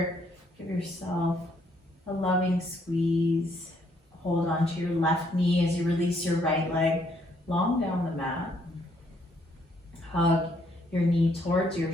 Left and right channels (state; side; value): normal; both; correlation 0.70